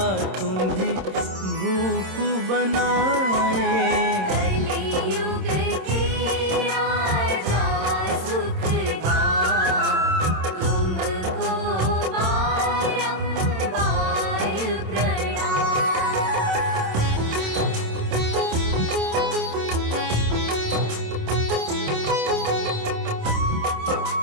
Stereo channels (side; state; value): left; late; 26 ms